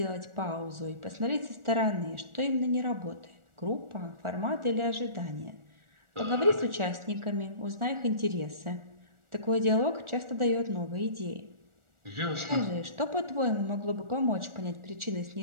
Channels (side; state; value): left; late; 1.4 ms